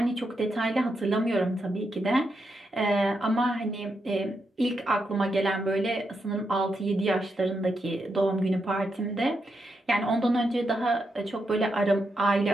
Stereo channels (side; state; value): both; normal; correlation 0.83